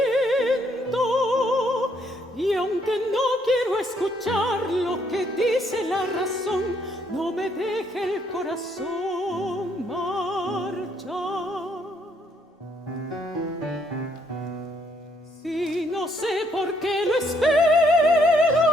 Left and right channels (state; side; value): normal; both; correlation 0.70